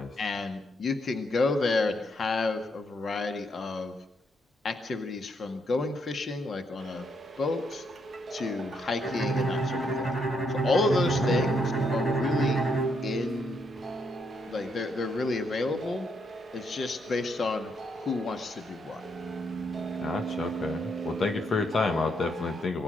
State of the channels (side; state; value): both; normal; correlation 0.76